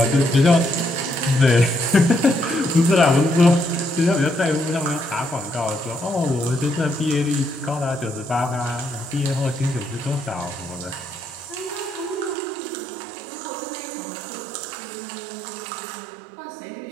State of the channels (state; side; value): drops out; left; at 12.4 s